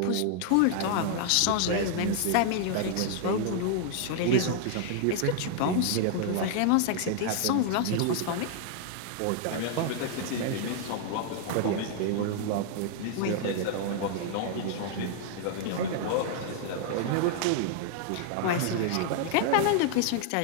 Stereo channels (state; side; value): different; both; correlation 0.00